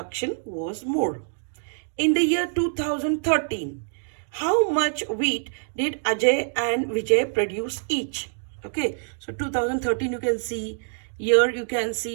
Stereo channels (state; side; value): silent; left; digital silence